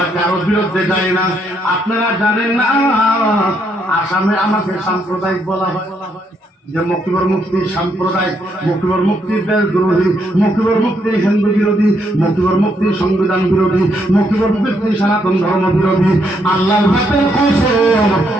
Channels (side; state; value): both; normal; correlation 0.75